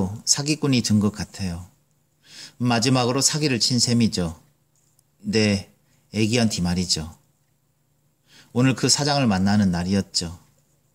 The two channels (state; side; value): identical; both; correlation 1.00